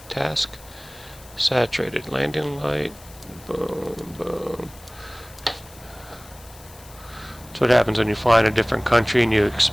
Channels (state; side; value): noise; left; hiss, 21 dB below the sound